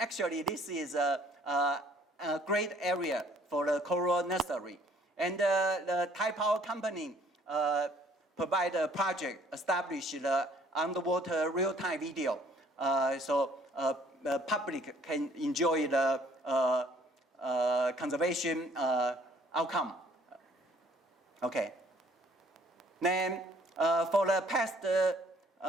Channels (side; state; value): both; normal; correlation 0.60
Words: this is a great area for the coral nursery. And the Thai Power Company provide a project, establish the underwater real-time video, so the public can enjoy the conservation outcome. Okay. Then for the past